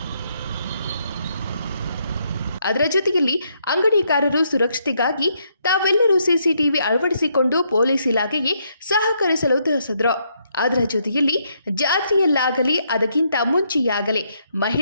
ಅದರ ಜೊತೆಯಲ್ಲಿ ಅಂಗಡಿಕಾರರು ಸುರಕ್ಷತೆಗಾಗಿ ತಾವೆಲ್ಲರೂ CCTV ಅಳವಡಿಸಿಕೊಂಡು ಪೊಲೀಸ್ ಇಲಾಖೆಗೆ ಸಹಕರಿಸಲು ತಿಳಿಸಿದರು. ಅದರ ಜೊತೆಯಲ್ಲಿ ಜಾತ್ರೆಯಲ್ಲಾಗಲಿ ಅದಕ್ಕಿಂತ ಮುಂಚೆಯಾಗಲಿ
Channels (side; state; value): both; inverted; correlation -0.74